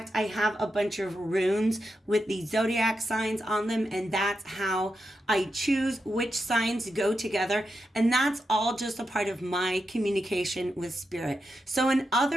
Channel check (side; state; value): both; normal; correlation 0.87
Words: I have a bunch of runes with the zodiac signs on them, and that's how I choose which signs go together. And that's all just a part of my communication with spirit. So in